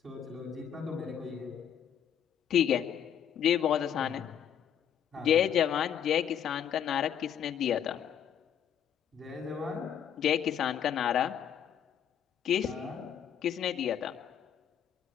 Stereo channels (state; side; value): quieter; right; 9.1 dB